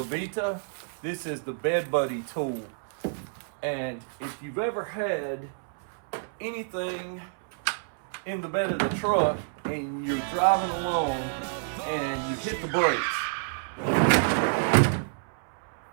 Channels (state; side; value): silent; left; 59 dB below the other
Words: this is the Bed Buddy tool. And if you've ever had anything in the bed of the truck and you're driving along and you hit the brakes,